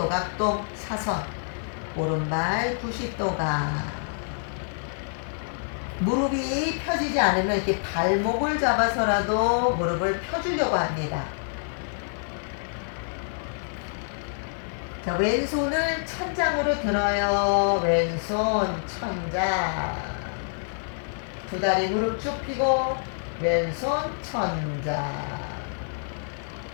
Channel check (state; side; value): silent; right; digital silence